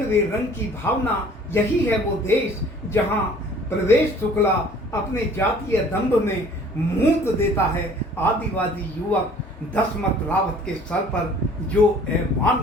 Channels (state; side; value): normal; both; correlation 0.52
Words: रंग की भावना। यही है वो देश जहां प्रवेश शुक्ला अपने जातीय दंभ में मूत देता है आदिवासी युवक दशमत रावत के सर पर, जो